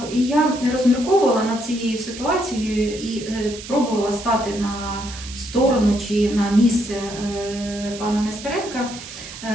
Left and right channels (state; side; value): noise; right; hiss, 13 dB below the sound